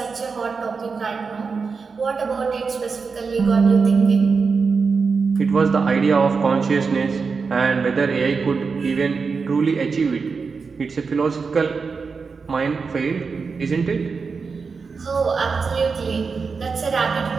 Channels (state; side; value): quieter; left; 5.0 dB